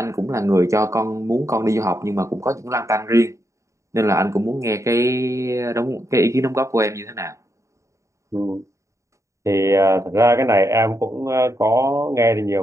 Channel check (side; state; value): left; late; 0.15 ms